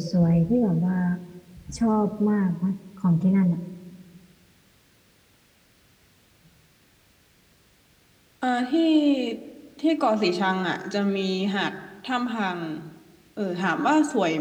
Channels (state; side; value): identical; both; correlation 1.00